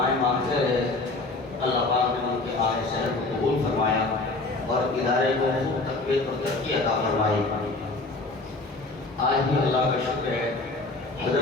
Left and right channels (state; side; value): quieter; right; 3.3 dB